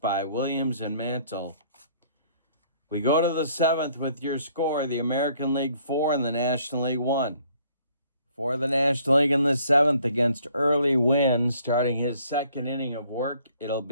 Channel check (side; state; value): both; inverted; correlation -0.61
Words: Williams and Mantle. We go to the 7th with your score, the American League 4 and the National League 1. For the National League in the 7th against Early Wynn, starting his 2nd inning of work, it'll